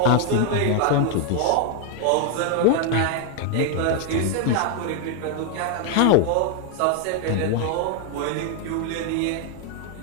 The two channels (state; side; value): different; both; correlation 0.00